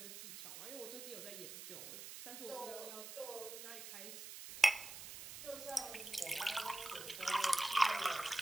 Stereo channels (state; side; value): noise; right; hiss, 10 dB below the sound